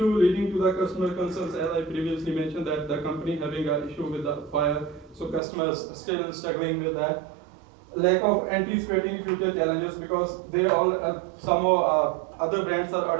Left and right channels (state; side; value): drops out; left; at 5.4 s